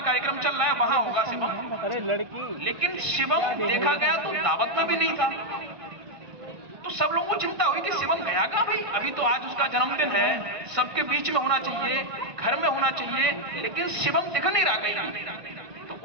कार्यक्रम चल रहा है वहां होगा शिवम। अरे लड़की। लेकिन शिवम देखा गया तो दावत में भी नहीं था। तो सब लोगों को चिंता हुई कि शिवम गया कहां भाई? अभी तो आज उसका जन्मदिन है, सबके बीच में होना चाहिए, घर में होना चाहिए, लेकिन शिवम दिख नहीं रहा कहीं। तो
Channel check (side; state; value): left; late; 1.6 ms